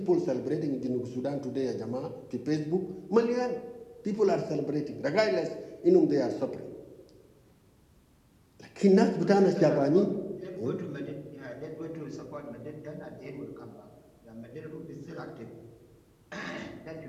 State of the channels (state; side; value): identical; both; correlation 1.00